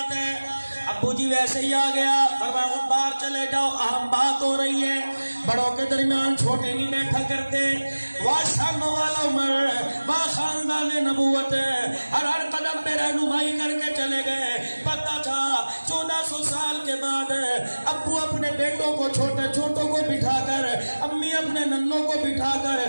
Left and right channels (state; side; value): inverted; both; correlation -1.00